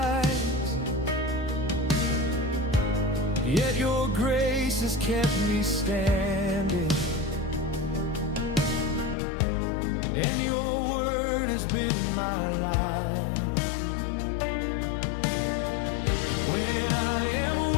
yet your grace has kept me standing, and your word has been my life. When I am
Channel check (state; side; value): drops out; right; at 9.2 s